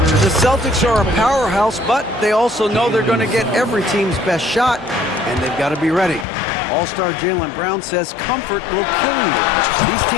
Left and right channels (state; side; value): drops out; right; at 6.2 s